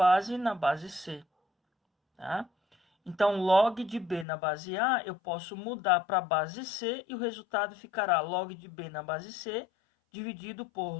na base c. Tá? Então, log de b na base a, eu posso mudar para a base c e o resultado ficará log de b na base c, dividido por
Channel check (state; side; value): drops out; right; at 4.2 s